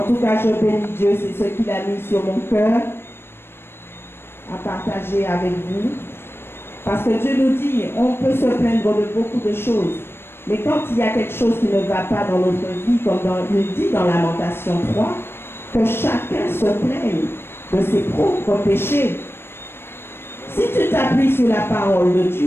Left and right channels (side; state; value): right; late; 0.11 ms